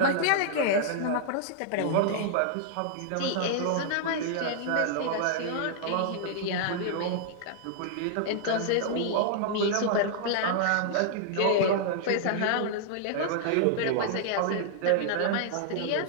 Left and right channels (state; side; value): different; both; correlation -0.01